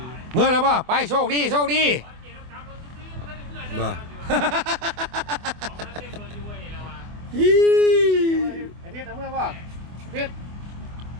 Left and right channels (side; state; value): left; late; 24 ms